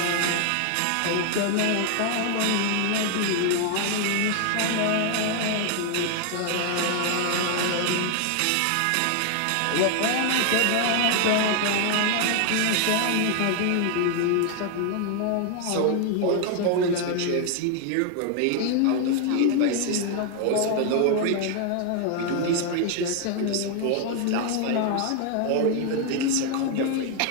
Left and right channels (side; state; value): both; different; correlation 0.00